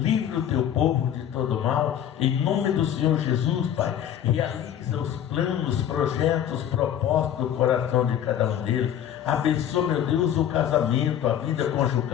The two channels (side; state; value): right; quieter; 10.1 dB